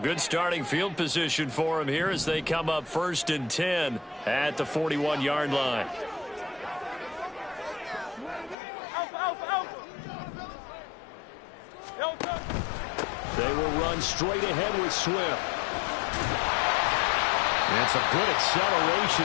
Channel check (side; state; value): right; drops out; at 8.6 s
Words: starting field position for them here as they come up first and 10 at the 41-yard line. They will run straight ahead with Swift. And some good acceleration